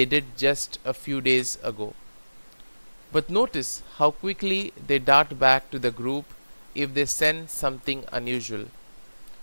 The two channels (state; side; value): inverted; both; correlation -1.00